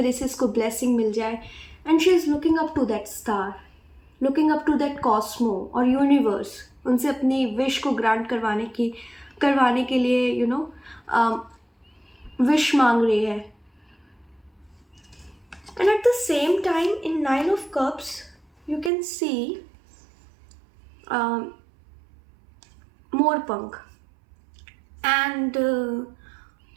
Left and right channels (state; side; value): drops out; left; at 18.9 s